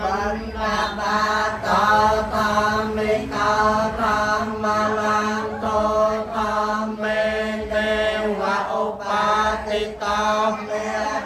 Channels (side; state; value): both; identical; correlation 1.00